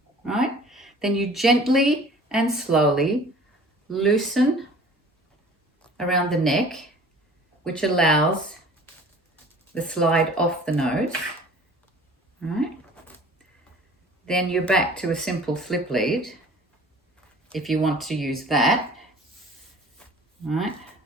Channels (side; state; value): both; normal; correlation 0.47